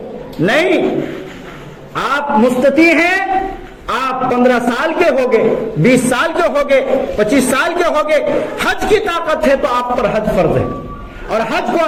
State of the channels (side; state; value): both; identical; correlation 1.00